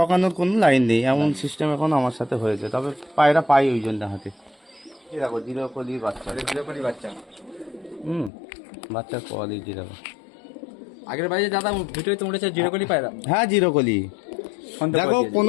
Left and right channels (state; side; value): drops out; right; at 8.3 s